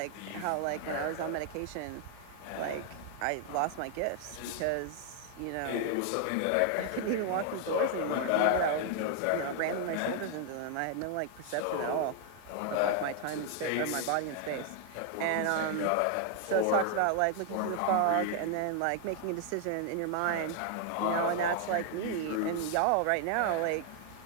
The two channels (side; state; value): both; different; correlation 0.00